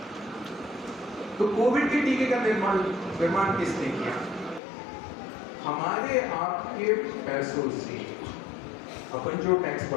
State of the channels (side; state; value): right; drops out; at 4.6 s